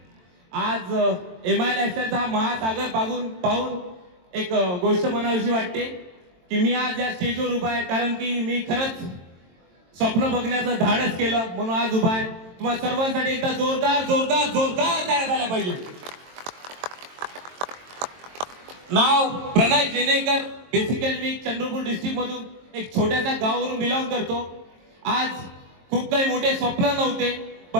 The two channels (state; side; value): late; left; 22 ms